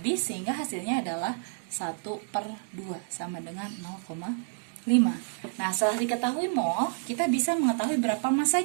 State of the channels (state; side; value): silent; left; digital silence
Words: sehingga hasilnya adalah 1/2 sama dengan 0,5. Nah, setelah diketahui mol, kita bisa mengetahui berapa